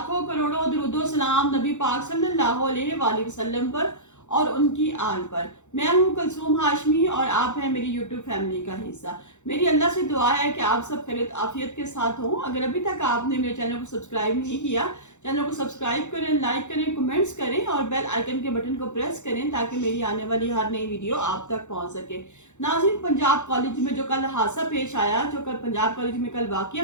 करोड़ों दुरूदो सलाम नबी पाक सल्लल्लाहु अलैहि वसल्लम पर और उनकी आल पर। मैं हूँ कुलसूम हाशमी और आप हैं मेरी यूट्यूब फैमिली का हिस्सा। मेरी अल्लाह से दुआ है कि आप सब खैरियत आफियत के साथ हों। अगर अभी तक आपने मेरे चैनल को सब्सक्राइब नहीं किया, चैनल को सब्सक्राइब करें, लाइक करें, कमेंट्स करें और बेल आइकन के बटन को प्रेस करें ताकि मेरी आने वाली हर नई वीडियो आप तक पहुंच सके। नाज़रीन, पंजाब कॉलेज में जो कल हादसा पेश आया, जो कल पंजाब कॉलेज में कल वाकया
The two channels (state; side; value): late; right; 0.84 ms